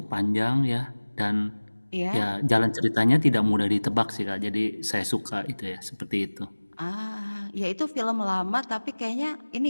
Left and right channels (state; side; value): inverted; both; correlation -1.00